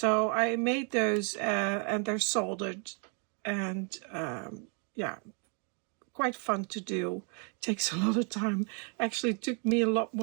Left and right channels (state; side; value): quieter; left; 38.6 dB